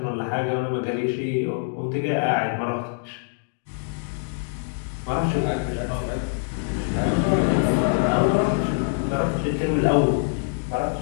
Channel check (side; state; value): right; silent; digital silence